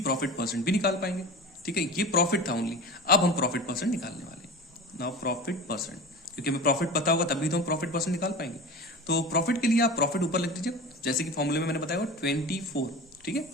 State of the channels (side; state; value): both; normal; correlation 0.32